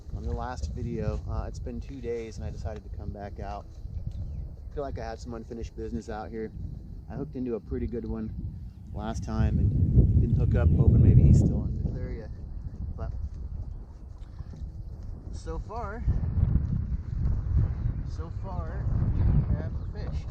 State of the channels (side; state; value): both; identical; correlation 1.00